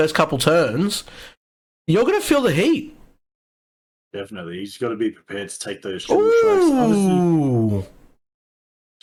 couple turns, you're going to feel the heat. Definitely. He's got to be prepared to take those triple strikes. Obviously,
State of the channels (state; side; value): identical; both; correlation 1.00